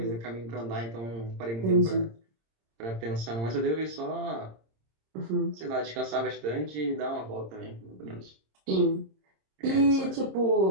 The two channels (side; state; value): left; late; 26 ms